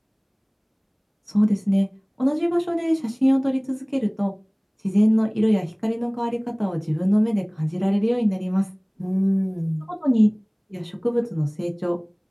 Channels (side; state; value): both; identical; correlation 1.00